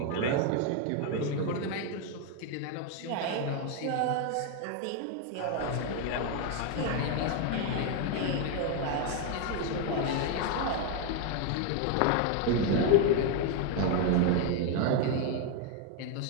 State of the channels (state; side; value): different; both; correlation 0.01